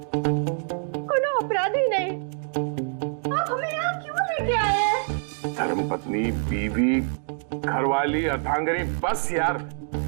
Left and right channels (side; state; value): left; silent; digital silence